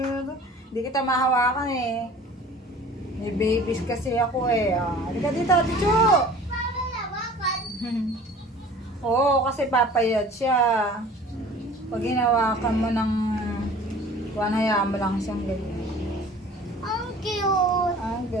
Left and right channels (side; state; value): both; normal; correlation 0.46